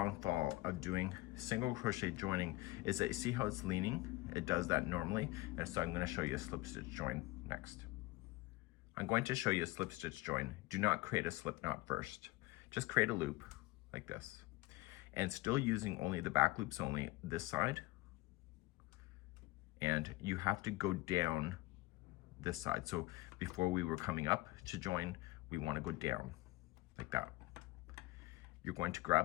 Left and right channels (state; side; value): quieter; right; 20.0 dB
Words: of doing single crochet joining is that you see how it's leaning? It does that normally, and so I'm going to show you a slip stitch join next. I'm going to show you a slip stitch join. Do not create a slip knot first. Just create a loop like this, and still using only the back loops only this side, and you have to go down this side. So before we were coming up to join, we want to go down like that. You're going to